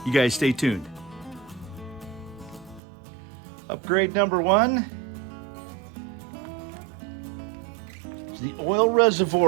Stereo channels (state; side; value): drops out; left; at 2.8 s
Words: You guys stay tuned. Upgrade number one is the oil